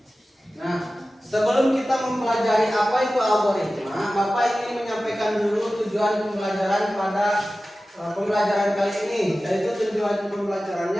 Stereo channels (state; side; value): normal; both; correlation 0.95